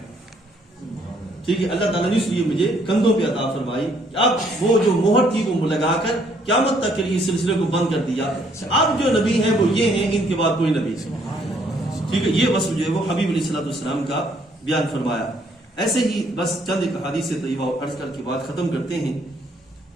ٹھیک ہے، اللہ تعالیٰ نے اس لیے مجھے کندھوں پہ عطا فرمائی کہ اب وہ جو مہر تھی وہ لگا کر قیامت تک کے لیے اس سلسلے کو بند کر دیا. اب جو نبی ہیں وہ یہ ہیں، ان کے بعد کوئی نبی. ٹھیک ہے، یہ وصف جو ہے وہ حبیب علیہ الصلوۃ والسلام کا بیان فرمایا. ایسے ہی بس چند ایک حدیث طیبہ عرض کر کے بعد ختم کرتے ہیں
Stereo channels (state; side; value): normal; both; correlation 0.67